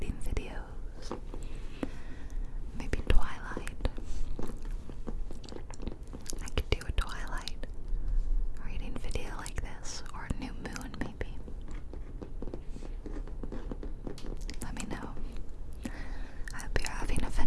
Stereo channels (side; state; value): both; identical; correlation 1.00